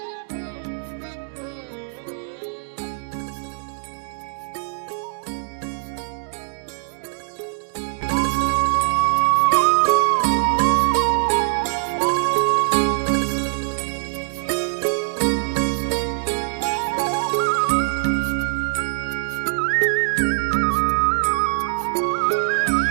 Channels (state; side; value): silent; left; digital silence